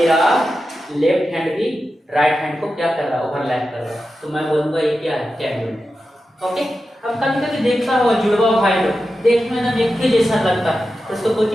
लेफ्ट हैंड भी राइट हैंड को क्या कर रहा है, ओवरलैप कर रहा है। तो मैं बोलूंगा ये क्या है, कैंग्रुएंट। ओके, अब कभी कभी देखता हो जुड़वा भाई लोग, देखने में एक ही जैसा लगता है, तो उसको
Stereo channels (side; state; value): both; normal; correlation 0.91